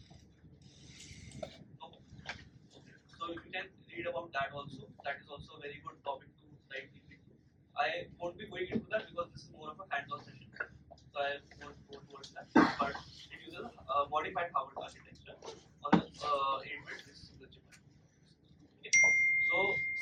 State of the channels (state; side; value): identical; both; correlation 1.00